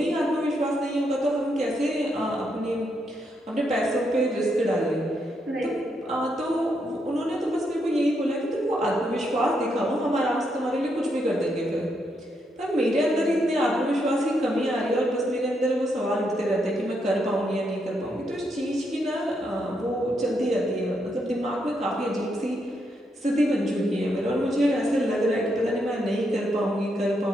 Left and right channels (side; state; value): both; normal; correlation 0.79